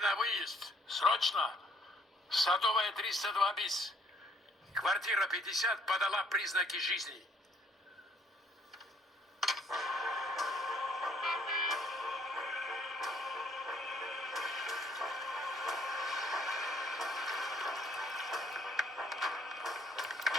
на выезд. Срочно. Садовая 302 bis. Квартира 50 подала признаки жизни.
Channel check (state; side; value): normal; both; correlation 0.64